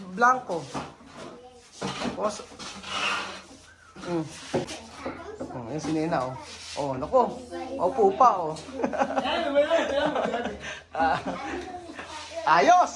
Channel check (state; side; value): identical; both; correlation 1.00